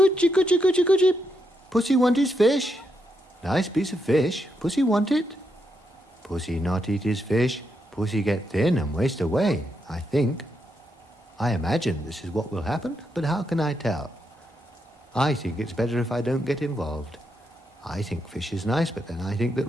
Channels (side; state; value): both; normal; correlation 0.81